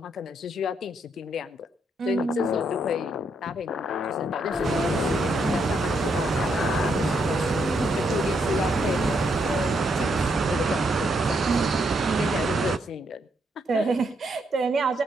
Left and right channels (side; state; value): both; normal; correlation 0.77